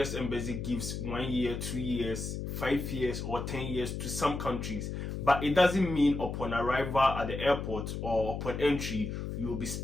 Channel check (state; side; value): noise; left; hum, 5 dB below the sound